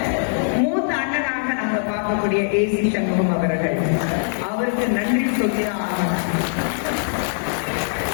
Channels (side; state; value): right; silent; digital silence